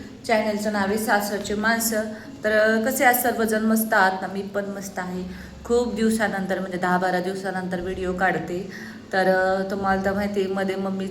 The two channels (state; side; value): identical; both; correlation 1.00